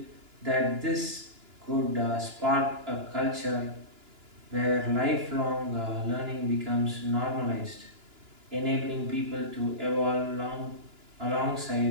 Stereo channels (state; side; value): late; left; 2.9 ms